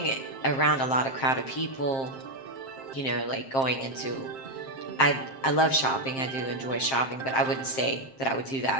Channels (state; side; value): late; right; 7.6 ms